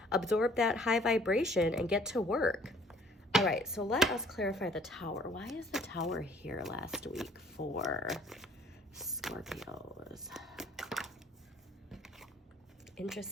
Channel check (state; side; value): normal; both; correlation 0.57